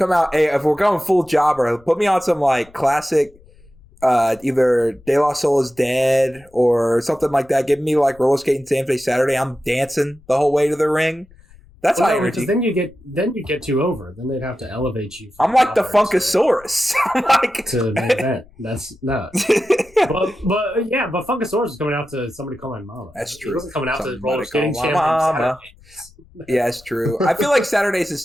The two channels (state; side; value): noise; left; rumble, 27 dB below the sound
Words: out. Hey, if we're going full jobber, put me on some like classic, either De La Soul Is Dead or something like that. Give me like roller skating Saturday. I'm dancing the whole way to the ring. That's high energy. Then you get too over. Then they'd have to elevate you. I'm like the Funkasaurus. I'm like to main event. That's no. but Funkasaurus is coming out to Somebody Call My Mama. That's true. He wasn't coming out to roller skating Mama. Yeah, it's true. I feel like Saturdays